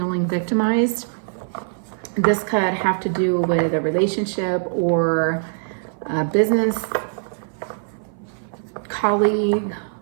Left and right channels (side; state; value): left; silent; 57 dB below the other